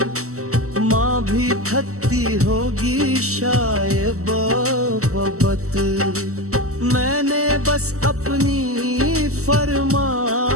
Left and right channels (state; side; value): late; left; 0.64 ms